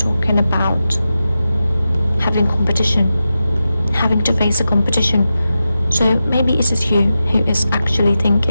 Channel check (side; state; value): both; inverted; correlation -0.91